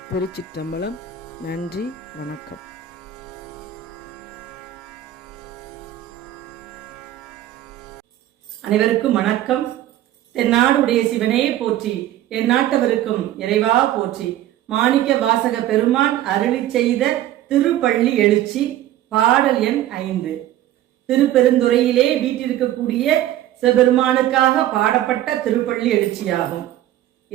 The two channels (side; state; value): left; quieter; 12.8 dB